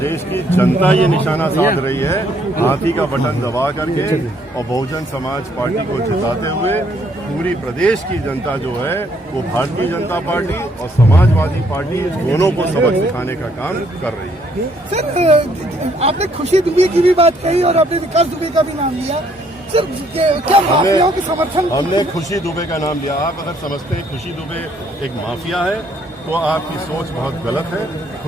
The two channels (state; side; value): normal; both; correlation 0.67